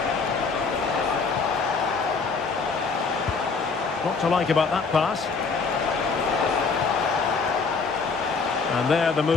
What to like about that pass? And there the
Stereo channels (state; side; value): quieter; right; 4.7 dB